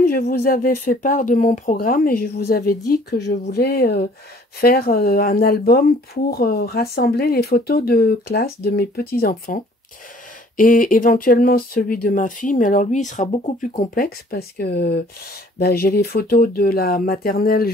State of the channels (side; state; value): both; normal; correlation 0.55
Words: je vous avais fait part de mon programme et je vous avais dit que je voulais faire un album pour rassembler les photos de classe de mes petits-enfants et éventuellement celui de ma fille, mais alors lui, il sera beaucoup plus complexe parce que j'ai les photos de la maternelle